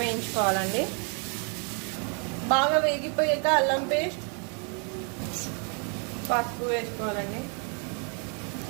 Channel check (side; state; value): left; quieter; 38.9 dB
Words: వేయించుకోవాలండి. బాగా వేగిపోయాక అల్లం పేస్ట్, పసుపు వేసుకోవాలండి.